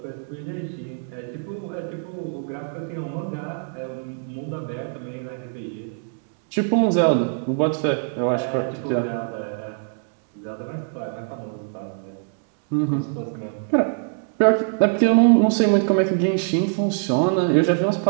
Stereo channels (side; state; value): left; silent; 63 dB below the other